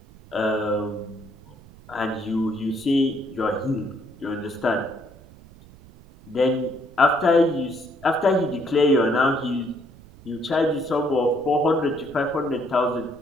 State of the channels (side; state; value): right; noise; rumble, 22 dB below the sound